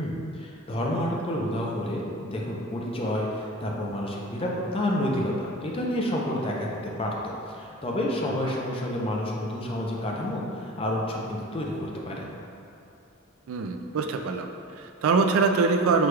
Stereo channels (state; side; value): normal; both; correlation 0.35